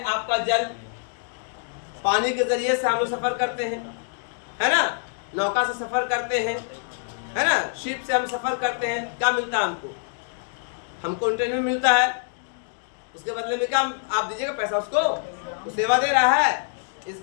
आपका जल, पानी के जरिए से हम लोग सफर करते हैं, है ना, नौका से सफर करते हैं, है ना, शिप से हम सफर करते हैं। क्या मिलता है हमको इंटरनेट में मिलता है, उसके बदले में क्या आप दीजिएगा पैसा उसको, तो सेवा दे रहा है।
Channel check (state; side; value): silent; right; digital silence